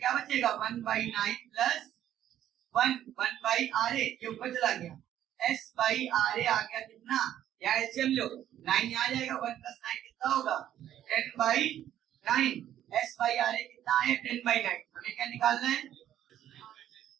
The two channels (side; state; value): left; quieter; 11.4 dB